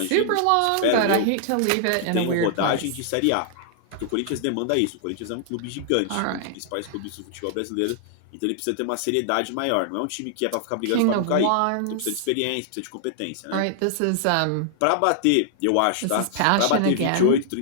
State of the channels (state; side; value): different; both; correlation -0.01